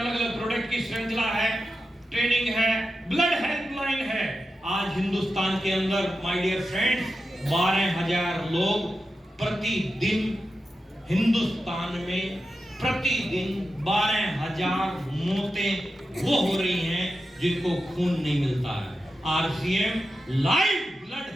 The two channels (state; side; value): normal; both; correlation 0.91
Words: अलग प्रोडक्ट की श्रृंखला है, ट्रेनिंग है, ब्लड हेल्पलाइन है। आज हिंदुस्तान के अंदर माय डियर फ्रेंड्स 12,000 लोग प्रतिदिन, हिंदुस्तान में प्रतिदिन 12,000 मौतें वो हो रही हैं जिनको खून नहीं मिलता है। आरसीएम लाइव ब्लड